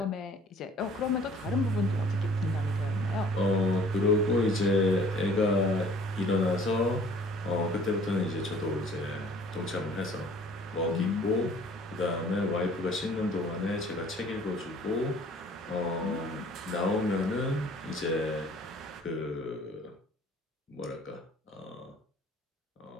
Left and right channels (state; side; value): normal; both; correlation 0.53